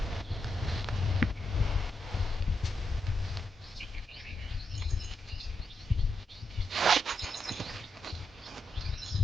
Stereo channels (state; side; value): normal; both; correlation 0.84